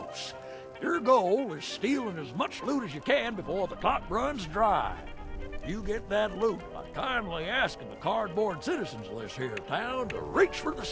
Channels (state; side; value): identical; both; correlation 1.00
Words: Your goal is stealing as much loot as you can before the clock runs dry. You get that loot by kindly asking the cardboard citizens list here in town to reach for the